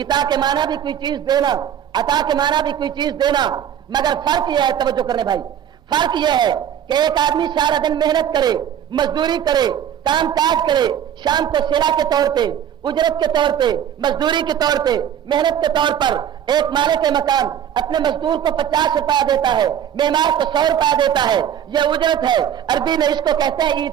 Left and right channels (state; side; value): quieter; left; 9.7 dB